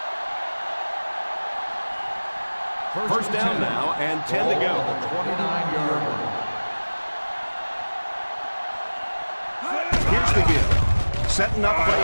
First down now and 10 to go. Ball on the 29-yard line. Here's the give. Setting up play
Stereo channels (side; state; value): both; inverted; correlation -1.00